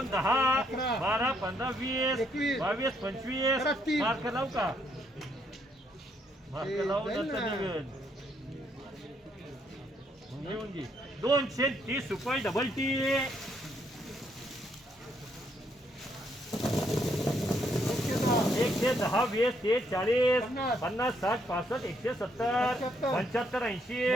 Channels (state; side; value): normal; both; correlation 0.72